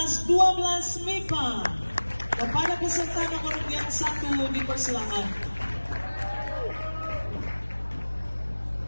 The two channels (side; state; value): both; inverted; correlation -1.00